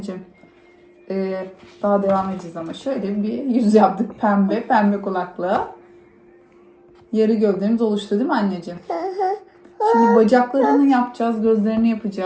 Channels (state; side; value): identical; both; correlation 1.00